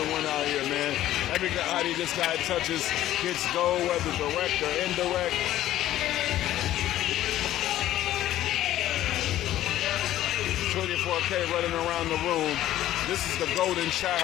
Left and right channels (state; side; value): quieter; right; 13.5 dB